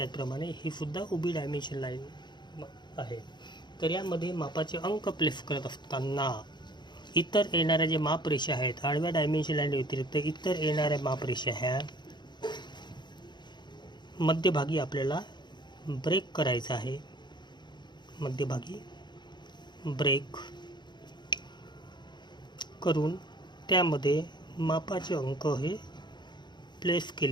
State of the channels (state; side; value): late; right; 0.21 ms